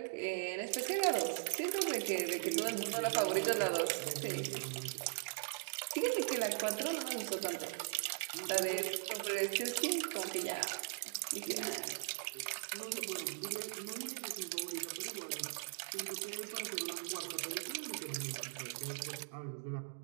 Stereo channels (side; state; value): left; silent; digital silence